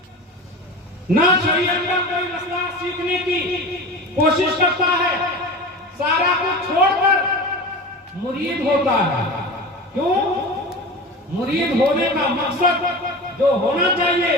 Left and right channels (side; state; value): both; normal; correlation 0.31